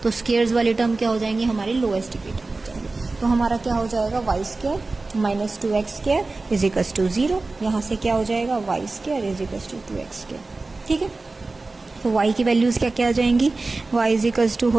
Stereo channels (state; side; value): quieter; left; 3.5 dB